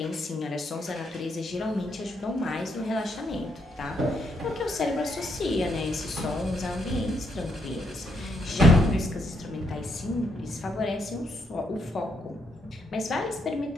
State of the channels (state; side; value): normal; both; correlation 0.76